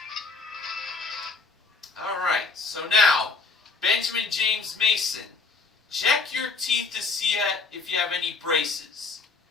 Alright, so now, Benjamin James Mason, check your teeth to see if you have any braces.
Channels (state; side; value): quieter; right; 4.3 dB